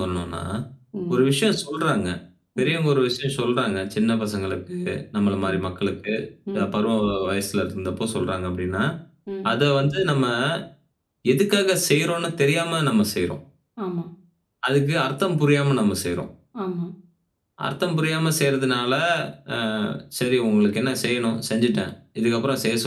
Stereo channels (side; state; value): both; identical; correlation 1.00